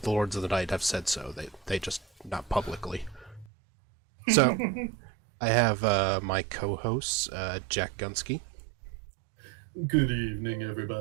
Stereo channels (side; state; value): left; drops out; at 3.5 s